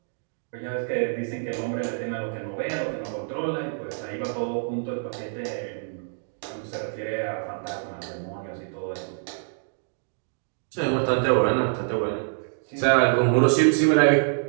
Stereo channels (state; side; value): silent; left; digital silence